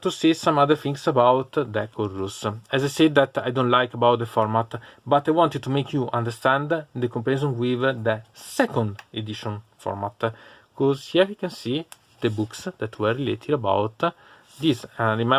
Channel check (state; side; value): identical; both; correlation 1.00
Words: to say some other things about the code rules. As I said that I don't like about the format, but I wanted to make you understand the comparison with the second edition format, because here you can see the books that were related about this, and